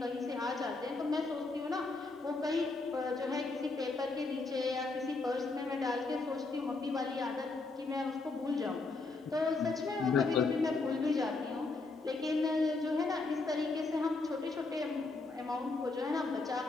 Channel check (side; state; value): right; quieter; 3.6 dB